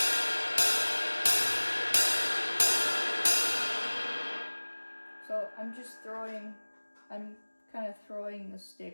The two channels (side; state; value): both; inverted; correlation -1.00